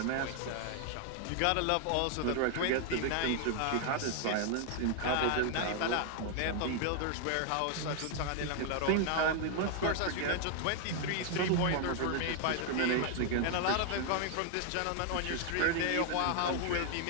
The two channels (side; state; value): both; different; correlation 0.00